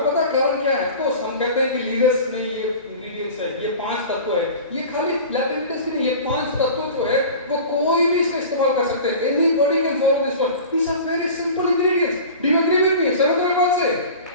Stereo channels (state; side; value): inverted; both; correlation -0.37